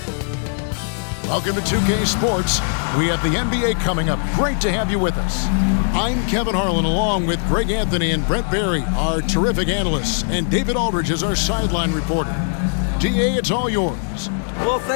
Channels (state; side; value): silent; right; digital silence